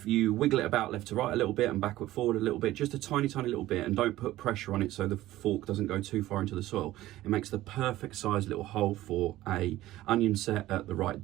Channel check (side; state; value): left; quieter; 15.7 dB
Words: you wiggle it about left to right a little bit and backward forward a little bit, just a tiny little bit, and don't put pressure on it so the fork doesn't go too far into the soil, it makes the perfect size little hole for a onion set at the right